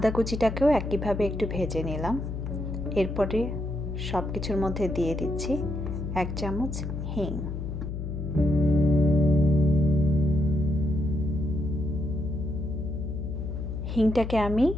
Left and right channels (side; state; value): left; noise; hum, 5 dB below the sound